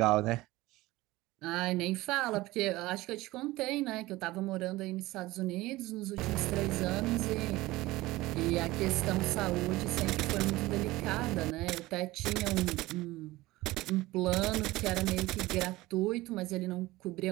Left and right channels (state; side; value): quieter; left; 18.9 dB